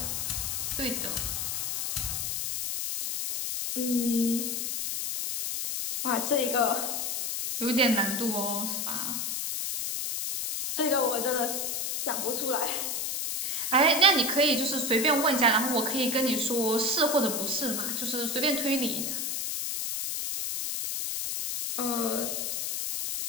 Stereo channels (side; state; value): left; noise; hiss, 1 dB below the sound